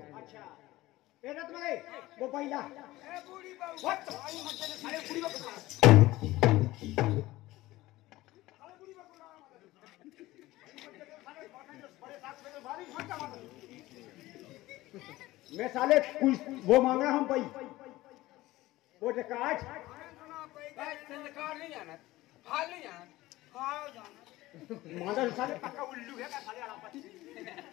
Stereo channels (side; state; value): right; quieter; 17.8 dB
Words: अच्छा वो पहिला बूढ़ी बहू मैं साले वो मांगा हम भाई वो कार्ड नहीं जाना हाल नहीं जाना मादा साले पक्का उल्लू है का साले आलापति